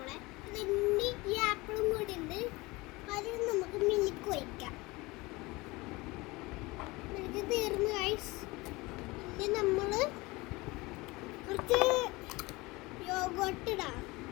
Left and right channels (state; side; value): quieter; right; 22.8 dB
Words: അതിൻ്റെ ഈ ആപ്പിളും കൂടി ഉണ്ട്. അതിൽ നമുക്ക് മിൽക്ക് ഒഴിക്കാം. മിൽക്ക് തീർന്നു ഗൈസ്. ഇനി നമ്മൾ കുറച്ച് യോഗോട്ട് ഇടാം.